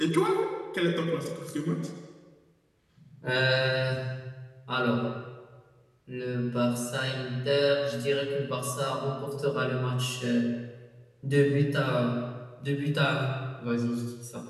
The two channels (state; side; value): identical; both; correlation 1.00